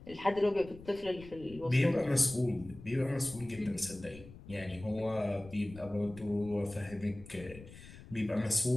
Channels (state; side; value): noise; left; rumble, 17 dB below the sound